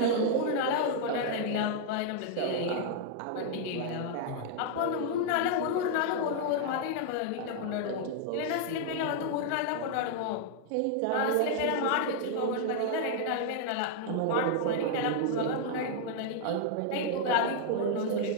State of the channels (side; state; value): both; different; correlation 0.00